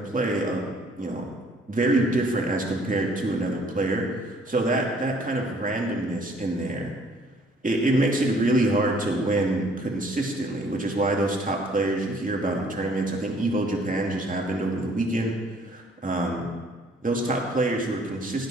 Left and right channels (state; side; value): normal; both; correlation 0.59